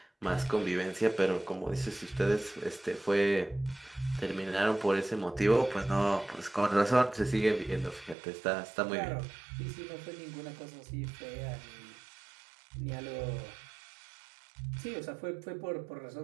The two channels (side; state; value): left; drops out; at 8.2 s